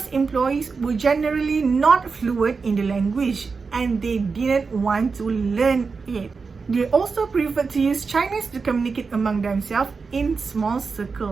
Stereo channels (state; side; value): quieter; left; 4.8 dB